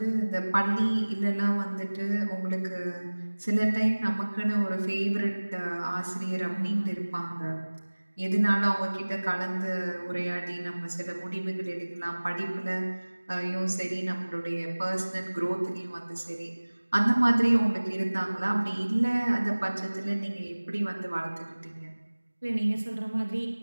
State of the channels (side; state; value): both; inverted; correlation -1.00